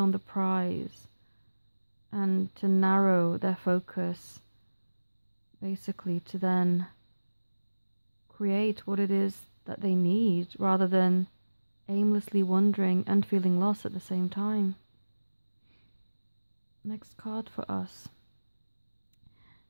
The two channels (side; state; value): both; inverted; correlation -1.00